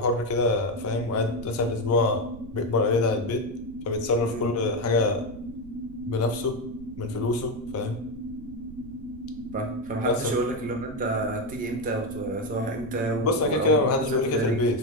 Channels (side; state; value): right; noise; rumble, 16 dB below the sound